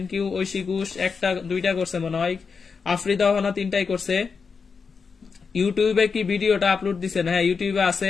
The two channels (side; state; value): right; quieter; 5.3 dB